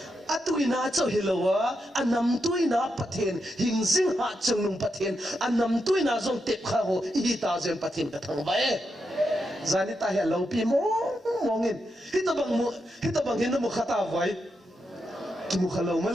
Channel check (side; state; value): both; normal; correlation 0.85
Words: atuina cho hilowa anam tuina paten hingsing hat chanung paten anam tuina zong tep kha ho ita zen paten ka thangwa e zanita he lo pi mongin hitabang hino mo khata vai ki mo khalo